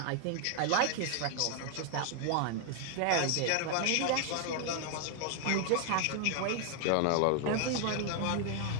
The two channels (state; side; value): different; both; correlation 0.00